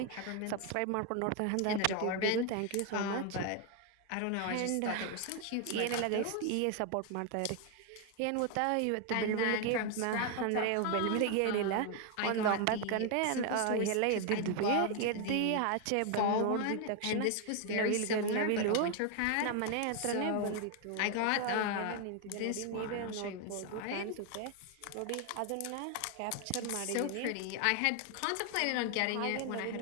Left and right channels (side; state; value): both; different; correlation 0.01